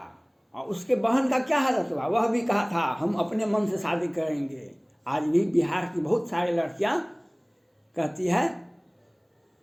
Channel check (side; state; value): both; identical; correlation 1.00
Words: और उसके बहन का क्या हालत हुआ? वह भी कहा था हम अपने मन से शादी करेंगे। आज भी बिहार की बहुत सारी लड़कियां कहती है